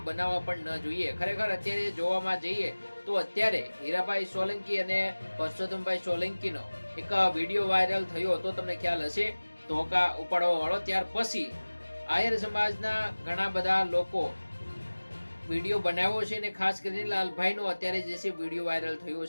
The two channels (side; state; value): both; inverted; correlation -1.00